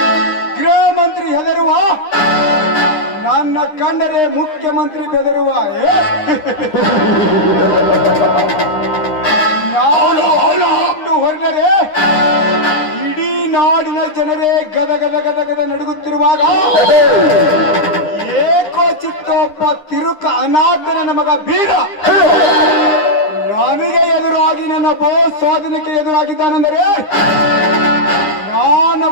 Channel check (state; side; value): late; right; 9.8 ms